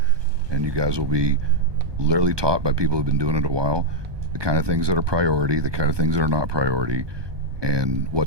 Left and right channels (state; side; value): late; left; 1.2 ms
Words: and you guys will be literally taught by people who've been doing it a while, the kind of things that are priority, the kind of things that are not priority, and what